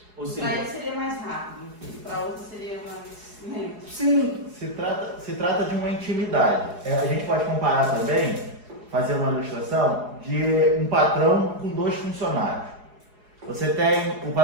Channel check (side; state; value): left; late; 4.8 ms